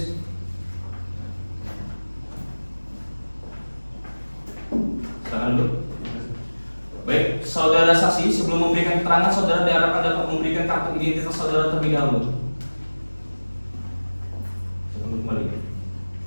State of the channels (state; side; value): inverted; both; correlation -1.00